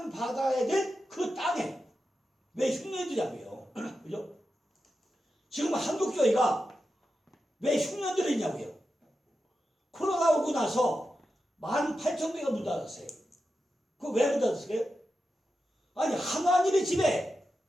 될 그 땅에 왜 흉년이 들냐고요. 그죠? 지금 한국교회가 왜 흉년들이 있냐고요. 코로나 오고 나서 18,000개가 문 닫았어요. 그거 왜 문 닫았어요? 아니, 하나님의 집에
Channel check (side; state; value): both; normal; correlation 0.90